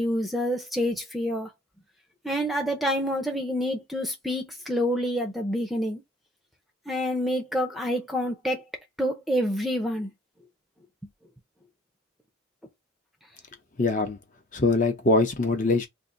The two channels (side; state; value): both; normal; correlation 0.55